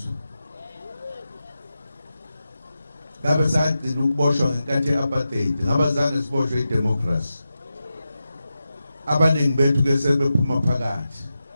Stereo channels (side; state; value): both; inverted; correlation -0.90